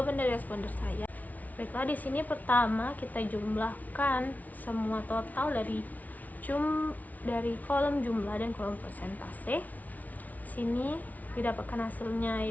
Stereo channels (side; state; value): right; late; 0.074 ms